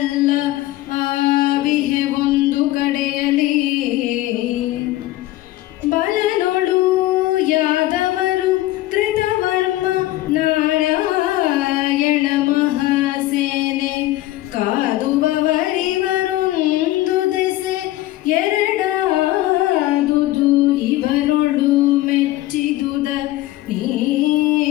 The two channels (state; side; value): quieter; right; 16.3 dB